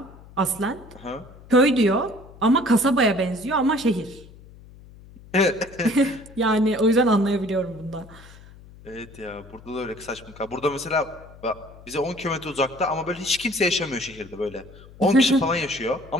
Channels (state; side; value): noise; left; hum, 21 dB below the sound